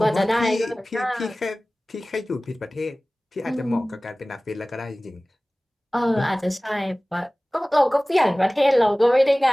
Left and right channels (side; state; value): both; normal; correlation 0.98